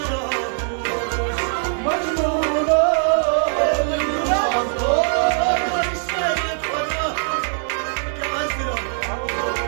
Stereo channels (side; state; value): left; silent; digital silence